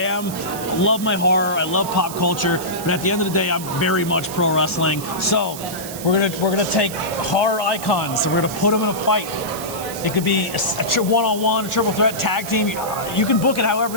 love my horror. I love pop culture, but at the end of the day, I'm very much pro wrestling. So we're gonna take horror icons and we're gonna put them in a fight. It could be a one-on-one, a triple threat, tag team. You can book it however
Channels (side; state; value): right; noise; hiss, 11 dB below the sound